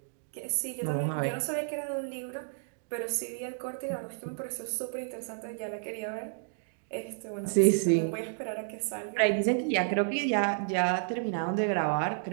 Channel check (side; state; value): left; silent; digital silence